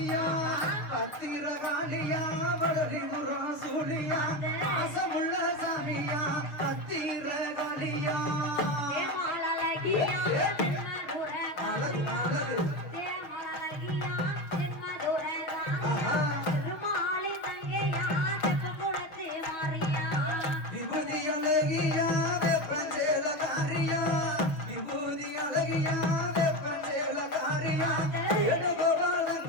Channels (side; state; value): right; late; 6.3 ms